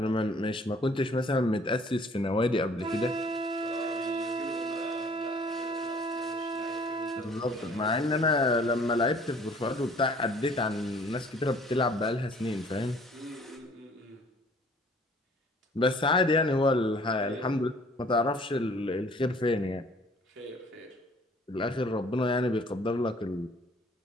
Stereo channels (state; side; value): normal; both; correlation 0.55